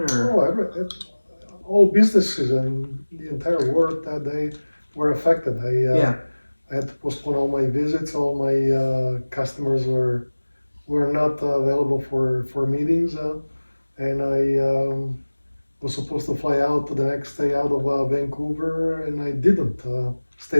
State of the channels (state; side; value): inverted; both; correlation -1.00